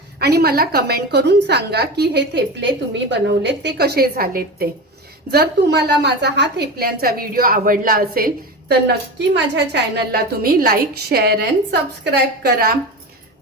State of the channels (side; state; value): both; normal; correlation 0.26